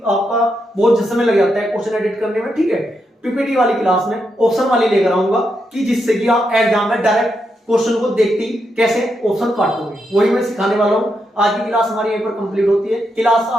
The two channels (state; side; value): normal; both; correlation 0.83